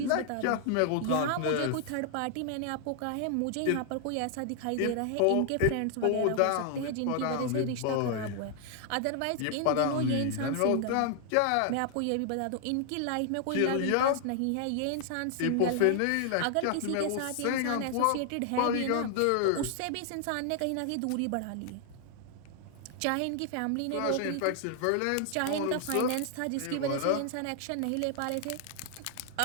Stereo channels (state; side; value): different; both; correlation 0.00